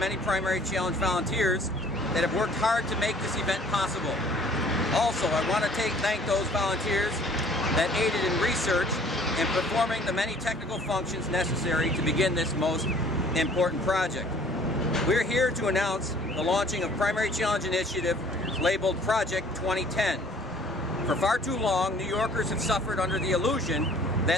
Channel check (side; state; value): both; normal; correlation 0.54